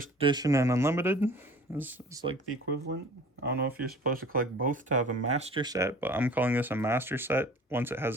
edition and unlimited is like the equivalent. I don't know if you're supposed to collect both to have a master set, but I'm calling this a master set once it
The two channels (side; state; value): both; normal; correlation 0.46